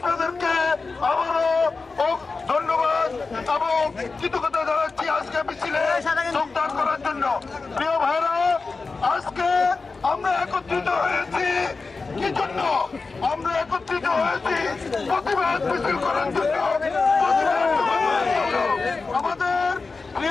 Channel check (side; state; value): right; quieter; 4.1 dB